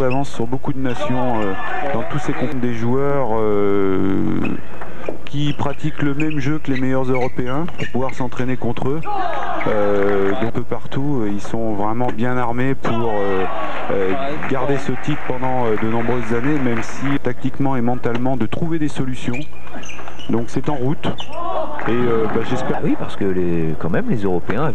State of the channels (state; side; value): noise; left; hum, 14 dB below the sound